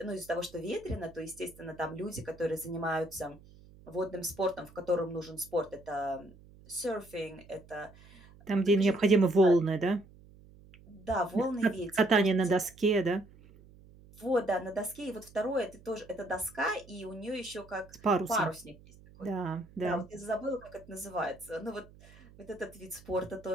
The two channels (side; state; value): right; noise; hum, 23 dB below the sound